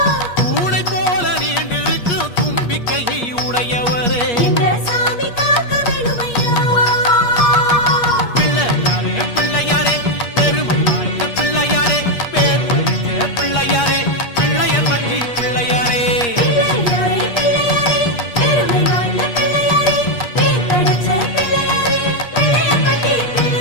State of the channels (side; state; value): right; late; 8.4 ms